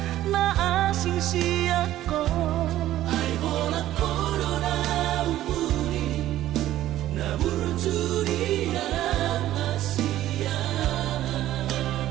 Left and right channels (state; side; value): quieter; left; 13.7 dB